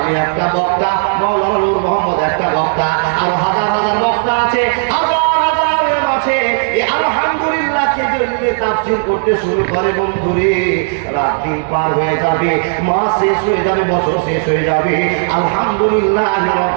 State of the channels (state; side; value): silent; left; digital silence